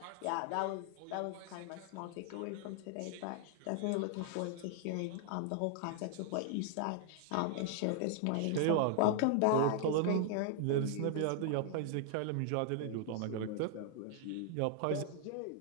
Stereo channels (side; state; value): both; different; correlation 0.00